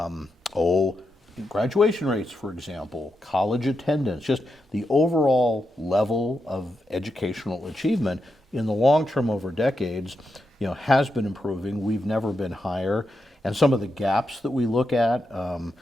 graduation rates, for example, college attendance, just the overall level of educational achievement in the long term over decades, you know, has been improving. We've never been higher. And some of the gaps that we look at,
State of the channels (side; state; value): both; normal; correlation 0.86